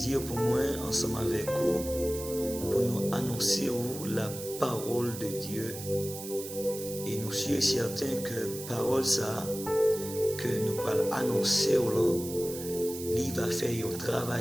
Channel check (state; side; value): noise; right; hiss, 10 dB below the sound